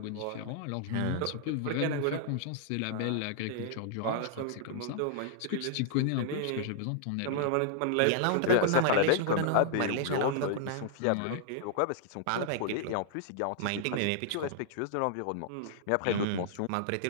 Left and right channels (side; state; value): both; different; correlation -0.01